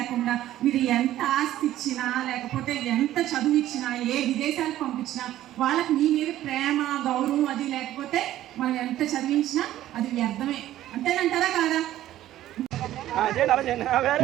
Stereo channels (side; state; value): left; quieter; 13.5 dB